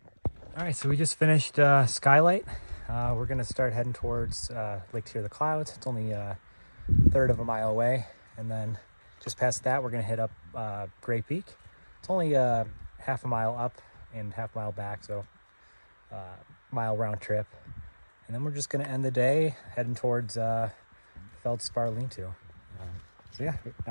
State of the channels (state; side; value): inverted; both; correlation -1.00